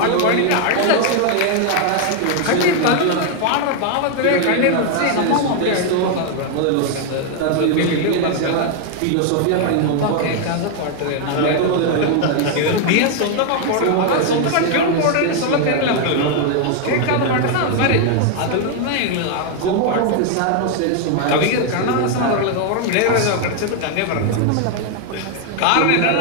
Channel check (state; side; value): different; both; correlation 0.00